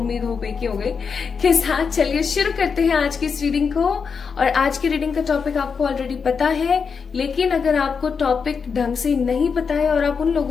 होप एक ही हो गई, के साथ चलिए शुरू करते हैं आज की इस रीडिंग को। और आज की रीडिंग का टॉपिक आपको ऑलरेडी पता है, लेकिन अगर आपको टॉपिक ढंग से नहीं पता है और आप उन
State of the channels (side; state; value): right; quieter; 5.8 dB